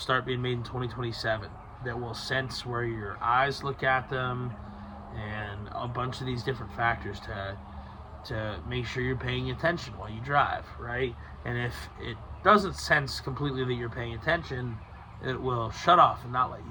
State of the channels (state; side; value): identical; both; correlation 1.00